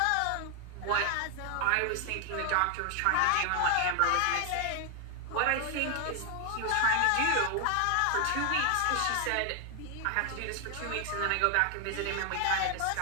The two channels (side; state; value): both; different; correlation 0.00